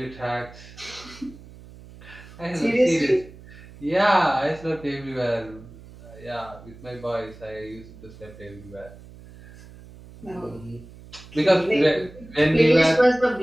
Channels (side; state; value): right; noise; hum, 19 dB below the sound